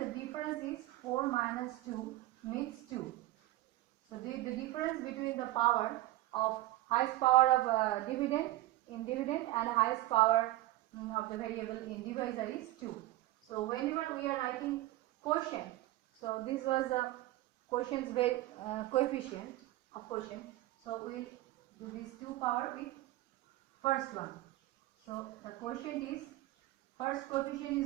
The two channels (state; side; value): quieter; left; 16.9 dB